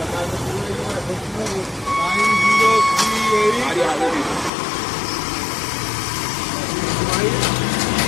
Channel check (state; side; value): drops out; right; at 4.5 s